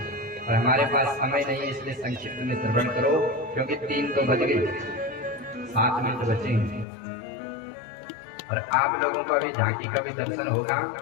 और हमारे पास समय नहीं है, इसलिए संक्षिप्त में श्रवण करो, क्योंकि 3 तो बज गए, 7 मिनट बचे हैं और आप लोगों को अभी झांकी का भी दर्शन होगा।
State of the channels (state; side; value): drops out; right; at 6.9 s